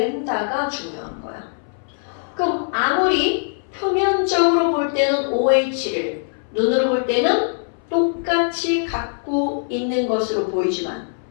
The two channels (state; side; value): silent; right; 62 dB below the other